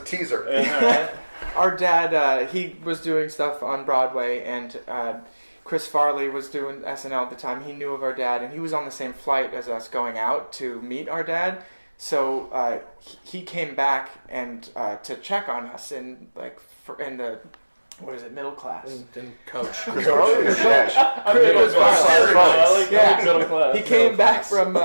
teaser. our dad, he was doing stuff on Broadway, and Chris Farley was doing SNL at the time. He knew of our dad, and he was on the same flight as us going out to meet our dad. So he came back and to check on us in the what is it, middle class? Didn't coach. Chris Farley. Yeah. He came back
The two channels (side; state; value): both; inverted; correlation -1.00